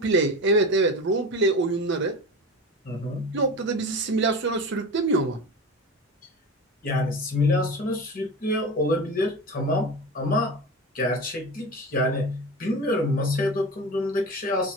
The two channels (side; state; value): both; normal; correlation 0.29